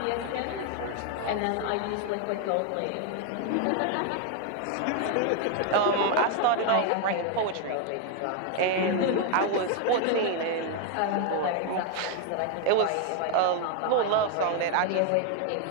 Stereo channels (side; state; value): both; different; correlation 0.01